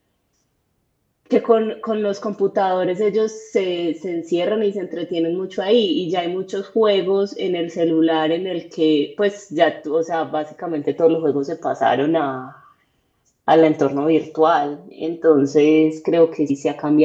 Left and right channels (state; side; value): identical; both; correlation 1.00